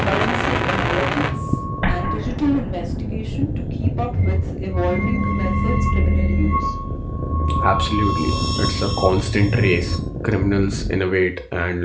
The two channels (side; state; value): both; identical; correlation 1.00